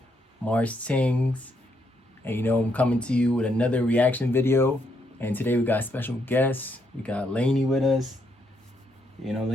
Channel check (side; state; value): both; normal; correlation 0.76